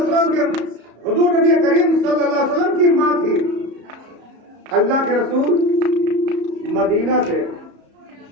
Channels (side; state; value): left; late; 34 ms